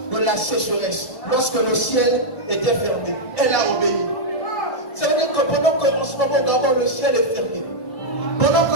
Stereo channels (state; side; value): late; right; 1.7 ms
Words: de la sécheresse, lorsque le ciel était fermé, elle a obéi. Ça veut dire que pendant qu'en ce moment d'abord le ciel est fermé, pendant